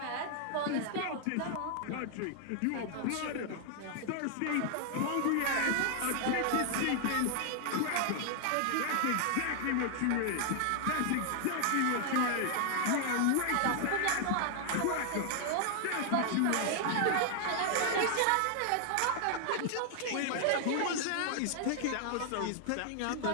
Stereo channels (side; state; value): both; different; correlation 0.00